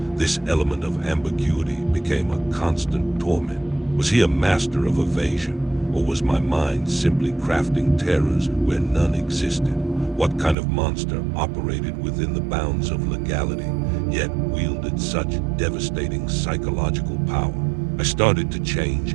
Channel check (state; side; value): drops out; left; at 10.6 s